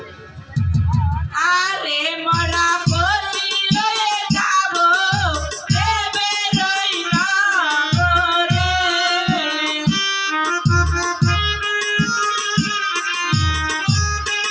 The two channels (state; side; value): identical; both; correlation 1.00